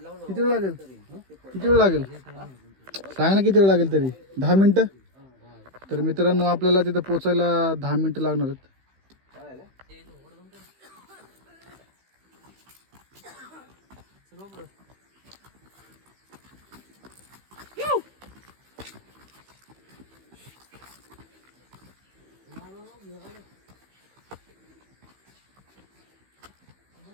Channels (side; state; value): left; late; 15 ms